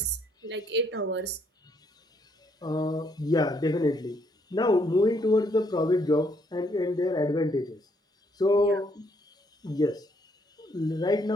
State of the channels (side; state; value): both; normal; correlation 0.70